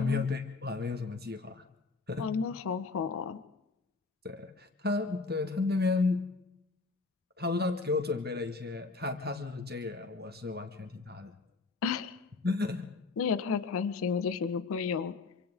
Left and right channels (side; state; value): right; quieter; 4.1 dB